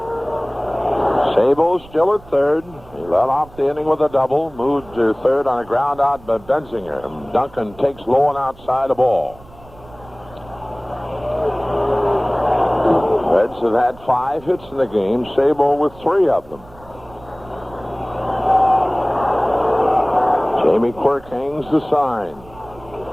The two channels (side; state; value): right; noise; rumble, 22 dB below the sound